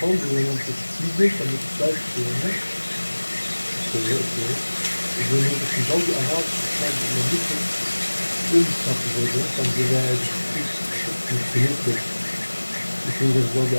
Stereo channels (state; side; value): inverted; both; correlation -1.00